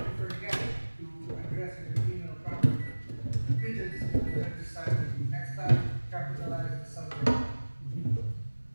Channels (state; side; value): inverted; both; correlation -1.00